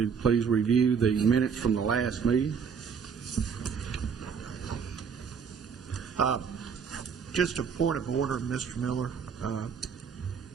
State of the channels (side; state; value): left; quieter; 6.5 dB